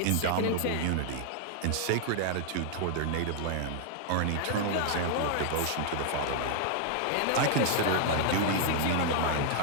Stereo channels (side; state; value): both; different; correlation 0.00